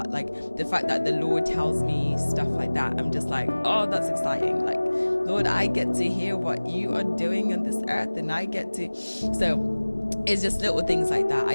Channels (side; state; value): both; inverted; correlation -1.00